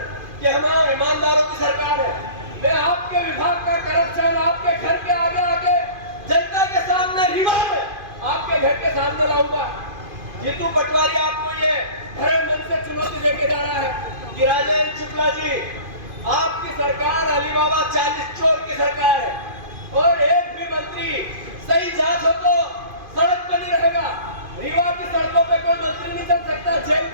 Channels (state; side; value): late; left; 2.5 ms